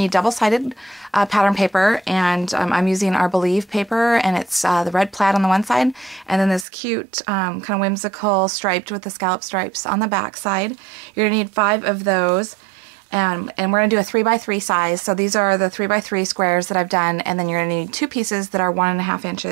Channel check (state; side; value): drops out; left; at 6.7 s